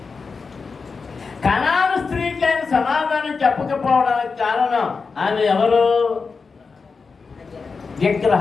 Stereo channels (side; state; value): right; quieter; 4.8 dB